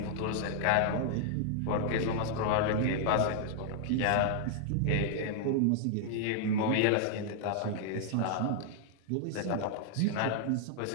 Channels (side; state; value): both; different; correlation -0.01